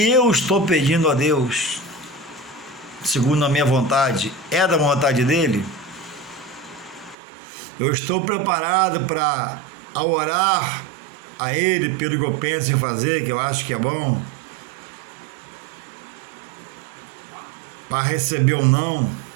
eu estou pedindo a Deus, segundo a minha vontade, é da vontade dele? Eu estou preparado para, ao orar a ele pelo que eu penso em fazer, que eu acho que é bom, para receber ou não?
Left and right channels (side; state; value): left; drops out; at 7.2 s